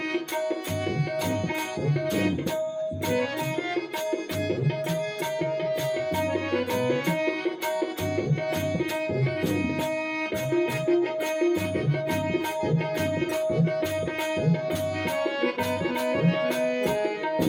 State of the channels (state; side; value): identical; both; correlation 1.00